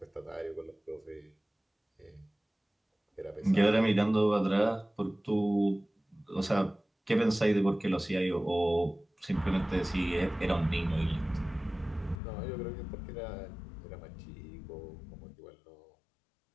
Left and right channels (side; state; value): right; drops out; at 12.2 s